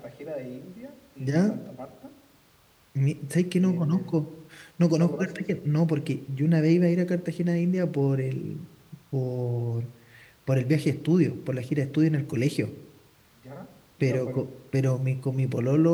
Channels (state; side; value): identical; both; correlation 1.00